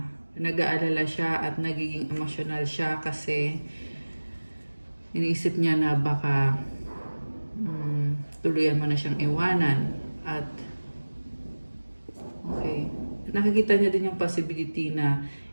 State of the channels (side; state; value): both; inverted; correlation -1.00